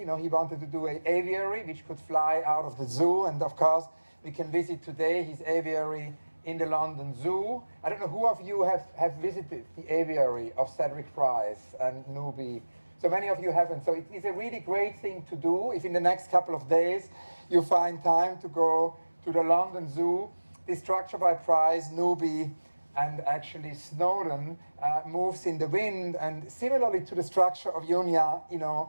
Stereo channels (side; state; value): both; inverted; correlation -1.00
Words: know, he wanted to do an aviary which could fly out of the zoo, and of course we can visit today his aviary in the London Zoo. I don't know who of you have visited the aviary of Cedric Price and Newby. So many of you haven't. So it is a really great thing to do if in the next couple of days you find time to go to the London Zoo. This structure by Price, Newby, and actually Snowdon moves in the wind, and similarly to the structure of Junya, you